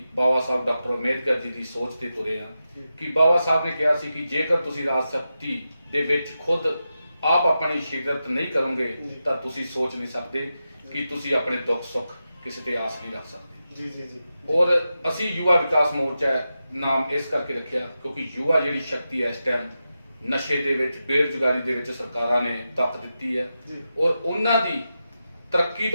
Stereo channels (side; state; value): both; inverted; correlation -0.90